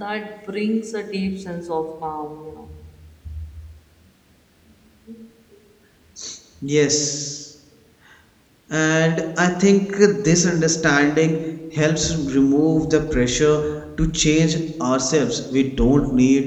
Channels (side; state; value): both; identical; correlation 1.00